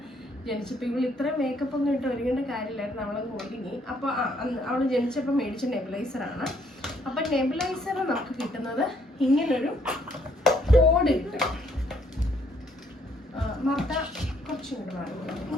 ജനിച്ചപ്പോൾ ഇവൾ ഇത്ര മേക്കപ്പ് ഒന്നും ഇട്ട് ഒരുങ്ങേണ്ട കാര്യമില്ലായിരുന്നു, അവളങ്ങ് ഒരുങ്ങി. അപ്പോൾ അവൾ ജനിച്ചപ്പോൾ മേടിച്ച നെബുലൈസറാണ്. അപ്പം നെബുലൈസർ നമുക്ക് കിട്ടുന്നത് ഇങ്ങനൊരു കോഡ് കിട്ടും. മർത്ത കുറച്ചും കൂടെ വാങ്ങുന്നത്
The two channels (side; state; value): both; normal; correlation 0.68